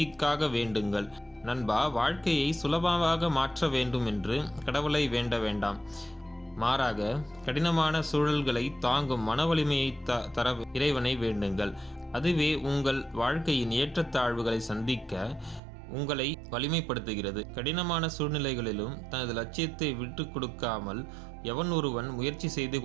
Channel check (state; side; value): drops out; left; at 15.6 s